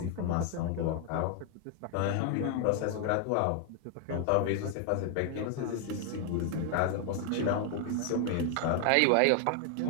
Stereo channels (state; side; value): different; both; correlation 0.00